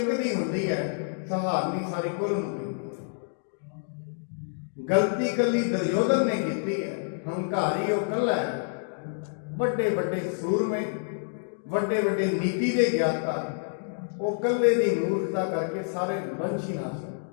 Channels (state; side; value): silent; right; digital silence